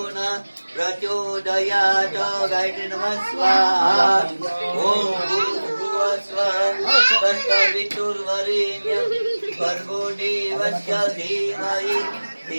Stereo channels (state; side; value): inverted; both; correlation -1.00